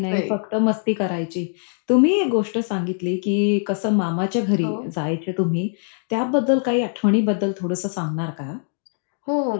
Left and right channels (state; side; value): silent; right; 60 dB below the other